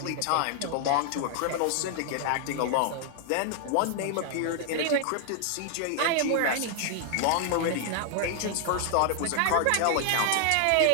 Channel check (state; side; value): different; both; correlation 0.00